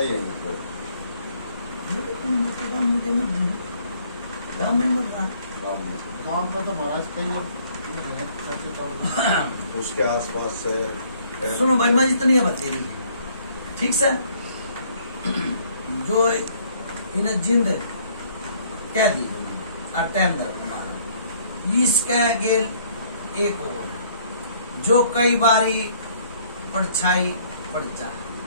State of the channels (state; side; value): inverted; both; correlation -0.62